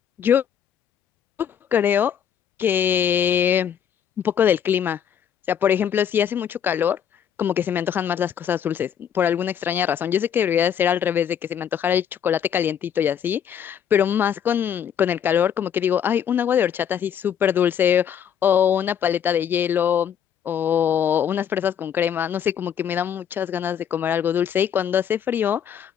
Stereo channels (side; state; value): right; quieter; 8.7 dB